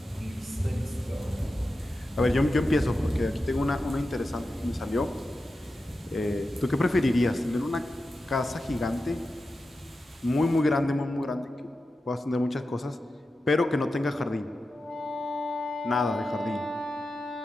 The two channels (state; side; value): normal; both; correlation 0.91